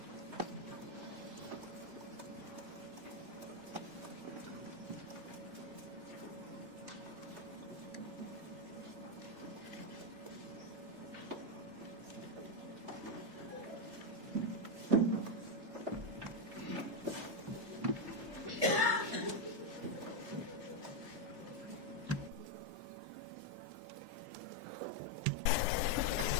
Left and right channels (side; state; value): left; late; 3.3 ms